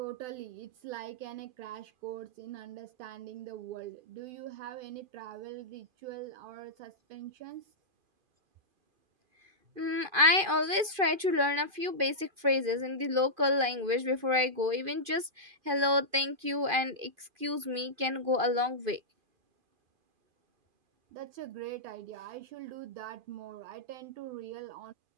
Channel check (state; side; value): late; left; 2.5 ms